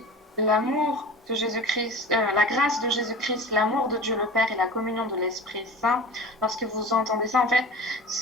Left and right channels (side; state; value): both; normal; correlation 0.35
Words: l'amour de Jésus-Christ, la grâce de Jésus-Christ, l'amour de Dieu le Père et la communion de l'Esprit Saint, lorsque vous entendez ça, en fait,